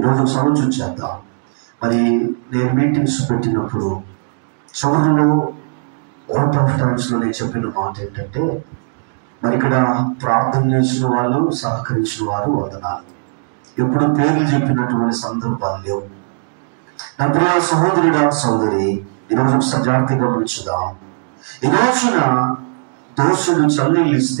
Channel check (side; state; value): left; silent; digital silence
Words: సమస్య చేద్దాం. మరి నేను మీటింగ్స్ పెట్టినప్పుడు చివరిలో అవుట్ ఆఫ్ టైమ్స్లో నేను చెప్పిన మాట ఏంటంటే, మరి ఇక్కడ ప్రార్థన చేసిన వాళ్ళు, సహకరించిన వారు వందనాలు. ఎప్పుడు పేర్లు చెప్పినటువంటి సందర్భాలు లేవు. నా ప్రియ సహోదరుడా, సహోదరి, ఈరోజు సజాగ్రత్తగా గమనించుదాం. ఈ రోజున దోషులు చల్లీళ్ళు